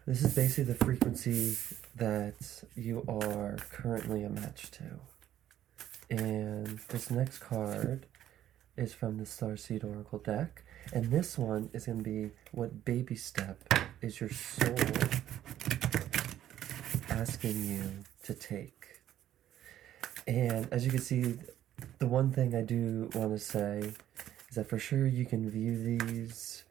This is basically the frequency that you are currently a match to. And this next card is from the Starseed Oracle deck. And this one is going to be what baby step is your soul asking you to take. And as you can see, the one thing I do want to say is that for sure you can view these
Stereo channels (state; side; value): quieter; left; 11.8 dB